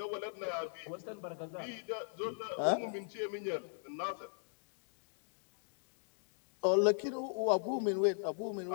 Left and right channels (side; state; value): right; silent; digital silence